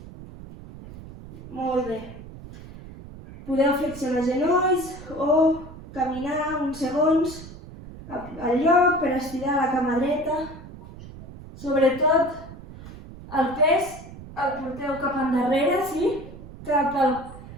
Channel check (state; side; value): noise; right; rumble, 15 dB below the sound